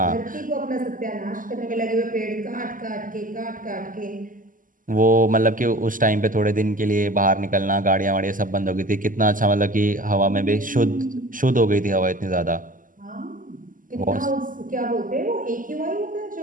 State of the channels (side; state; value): left; late; 0.39 ms